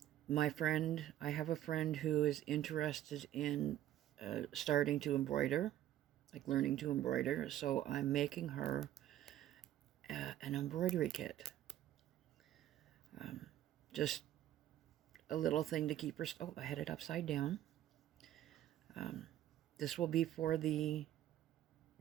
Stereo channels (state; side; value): quieter; left; 12.4 dB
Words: have a friend who is interested in starting to embroider, like learning to embroider, so I'm making her an embroidery kit. Just a little thing to keep her... Oh, I had it upside down. This will be for the